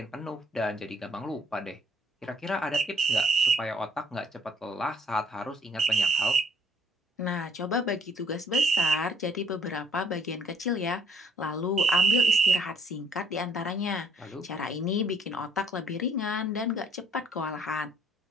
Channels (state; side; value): normal; both; correlation 0.62